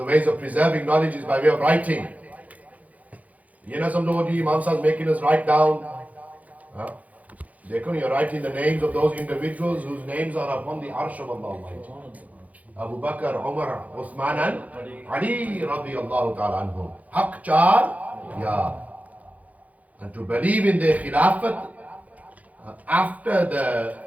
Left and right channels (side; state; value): left; late; 0.073 ms